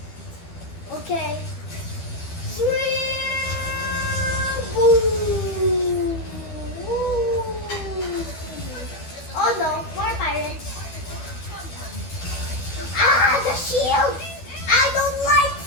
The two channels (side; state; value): right; late; 12 ms